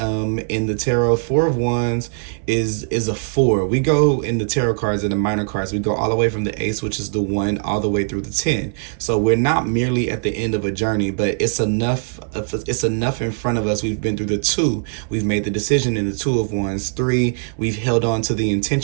the tarot, Four of Wands is a four. We go in the tarot cards and the minor cards, we go all the way from the ace, which is the one, all the way through the 10. So we're not merely at the end of a journey, but it's enough in front of us. We've been through the two, we've made the decision in the Two of Wands. 3, we've held on to the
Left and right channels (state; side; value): silent; left; 60 dB below the other